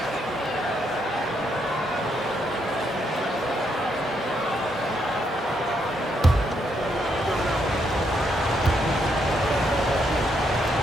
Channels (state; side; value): normal; both; correlation 0.76